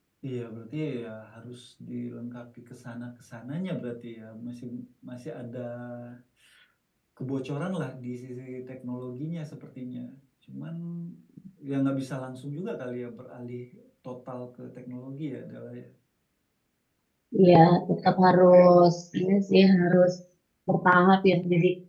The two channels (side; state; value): both; identical; correlation 1.00